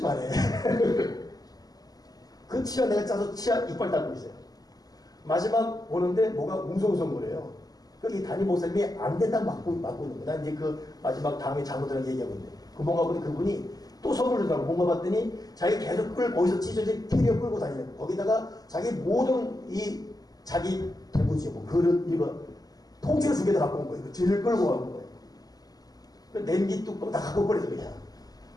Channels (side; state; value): right; late; 0.18 ms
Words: 그 치아 내가 짜서 치아 이빨 닦고 있어요. 마지막 오는데 뭐가 웅성웅성거려요. 여기 담임 목사님이 안 된다고 막고 있는 거야. 난 이제 그 마지막 다음에 장모들랑 얘기하고 있는데 그 뭔가 보니 그분이 또 선물을 준다고 뭔가 봤더니 자기 계속 거기서 찢어진 캐리어 끌고 다니는 거. 거기다가 자기 모든 자기 대부지 뭐 그릇 이거 통째로 2개 다 갖고 온 거예요. 뒤를 끌고 가는 거예요. 그 냄비 뚜껑 다 갖고 버려서 그냥.